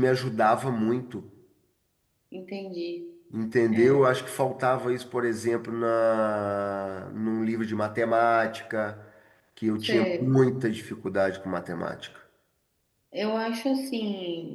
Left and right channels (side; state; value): both; identical; correlation 1.00